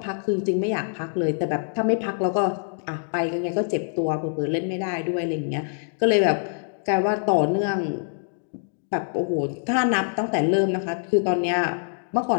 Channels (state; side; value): silent; right; digital silence